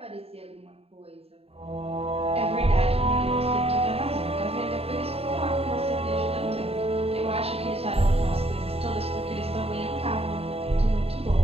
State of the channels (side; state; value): left; late; 0.29 ms